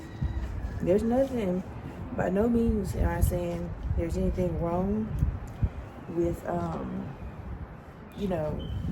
There's nothing, by no means am I saying there's anything wrong with, you know,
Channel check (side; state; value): both; identical; correlation 1.00